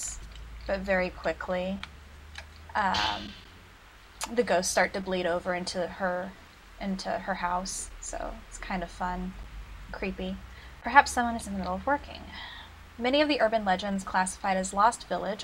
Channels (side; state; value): both; identical; correlation 1.00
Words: but very quickly, the ghosts start to bleed over into her house, so it's kind of fun, creepy. Perhaps someone is in the middle of working. Many of the urban legends classified as Lost Village